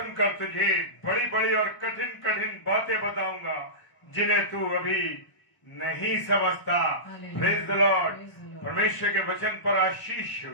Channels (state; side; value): late; right; 1.0 ms